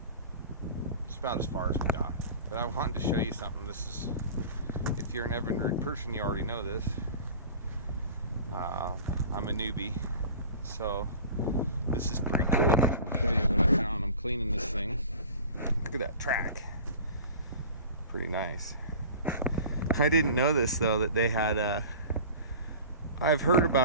it's about as far as we got. But I wanted to show you something. This is, if you're an Evinrude person, you already know this. I'm a newbie, so this is pretty cool. I'll show you what I found. I'm cleaning this thing. Look at that track. Pretty nice. I didn't know this though, that they had I've heard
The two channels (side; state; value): both; inverted; correlation -0.39